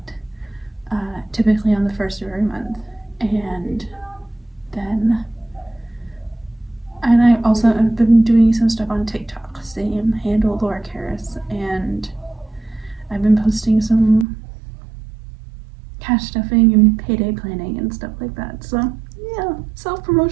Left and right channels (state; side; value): drops out; left; at 14.2 s